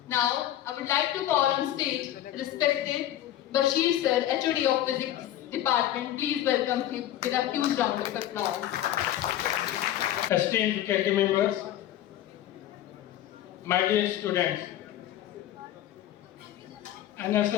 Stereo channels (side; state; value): right; quieter; 12.5 dB